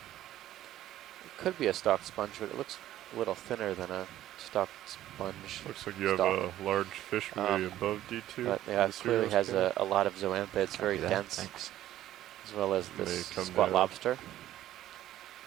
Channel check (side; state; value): left; quieter; 13.3 dB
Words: it could be a stalked sponge, but it looks a little thinner than a stalked sponge. Looks like you have Stalk. a large fish really above D2. But yeah, on it the clearly serial has scale. a lot of zoanthids, very Copy that, dense, Thanks. as well as May this come squat down. lobster.